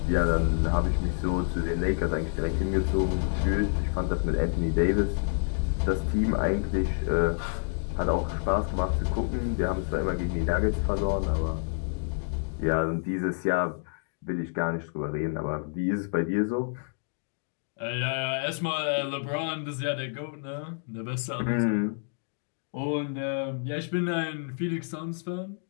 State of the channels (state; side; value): silent; right; 59 dB below the other